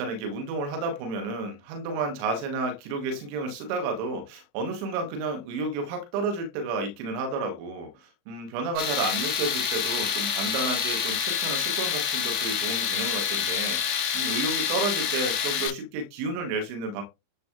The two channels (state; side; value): late; left; 35 ms